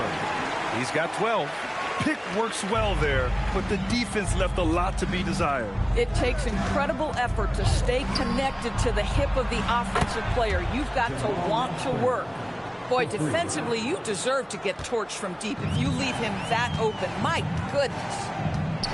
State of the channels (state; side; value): identical; both; correlation 1.00